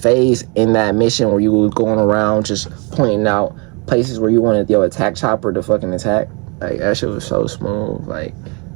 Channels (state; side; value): quieter; left; 32.1 dB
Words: in that mission where you were going around just pointing out places where you wanted your attack chopper to fucking attack. Like, that shit was so smooth. Like,